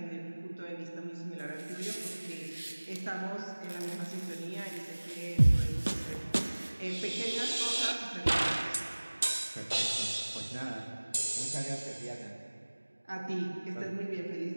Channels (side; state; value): both; inverted; correlation -1.00